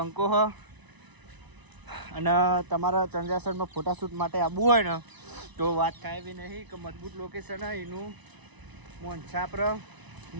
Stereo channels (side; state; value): left; late; 1.0 ms